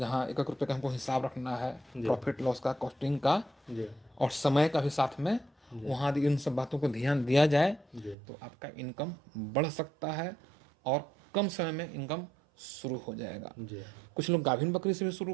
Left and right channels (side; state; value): left; drops out; at 8.2 s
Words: 1-1 रुपये का हमको हिसाब रखना है, जी। प्रॉफिट लॉस का, कॉस्टिंग का जी और समय का भी साथ में, वहाँ यदि इन सब बातों को ध्यान दिया जाए जी तो आपका इनकम बढ़ सकता है और कम समय में इनकम शुरू हो जाएगा। जी। कुछ लोग गाभिन बकरी से भी शुरू